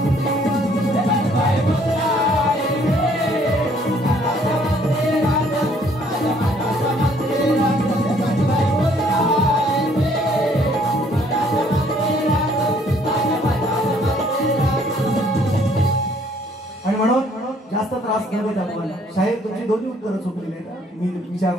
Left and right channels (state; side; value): normal; both; correlation 0.62